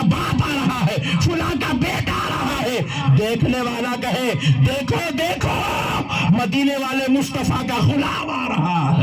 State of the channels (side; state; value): both; identical; correlation 1.00